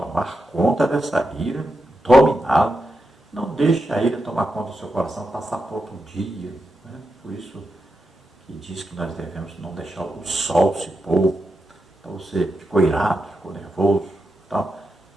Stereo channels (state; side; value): normal; both; correlation 0.87